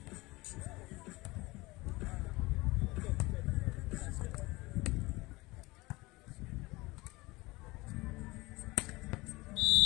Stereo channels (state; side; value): quieter; right; 22.1 dB